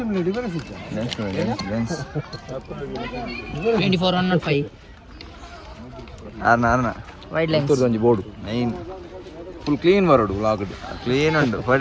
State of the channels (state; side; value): identical; both; correlation 1.00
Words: लेंस 24-105 आरना wide lens ಒಂಜಿ ಬೋರ್ಡ್ ನೈನ್ ಫುಲ್ ಕ್ಲೀನ್ ಬರೋಡು ವ್ಲಾಗ್ ಕ್ಲೀನ್ ಉಂಟು